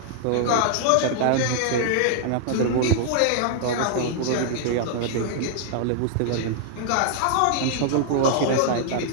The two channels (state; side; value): different; both; correlation -0.01